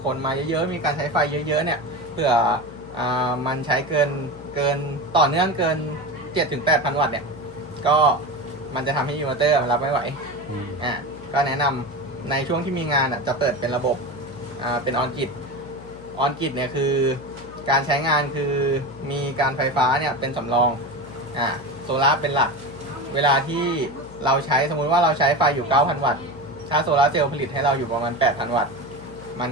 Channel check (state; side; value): noise; left; hum, 17 dB below the sound